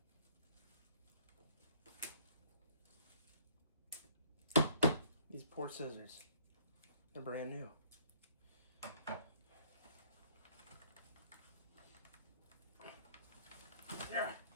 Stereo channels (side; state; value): both; inverted; correlation -0.59